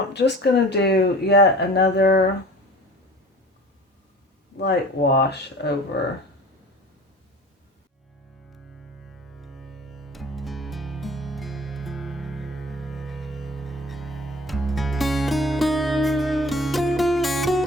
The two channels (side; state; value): both; normal; correlation 0.44